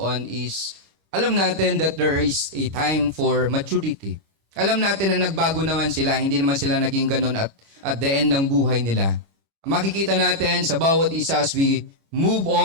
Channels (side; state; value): left; late; 25 ms